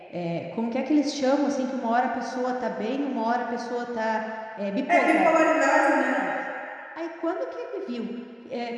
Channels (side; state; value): both; identical; correlation 1.00